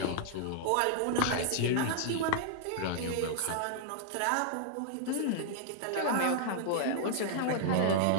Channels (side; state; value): both; different; correlation -0.01